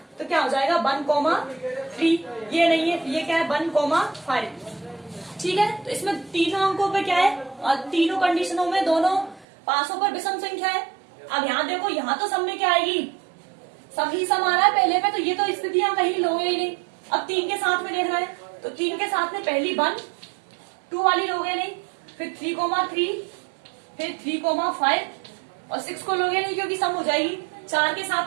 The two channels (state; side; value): drops out; left; at 9.5 s